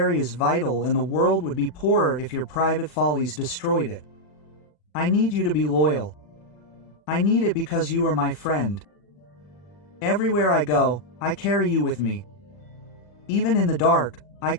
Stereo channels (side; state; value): right; late; 40 ms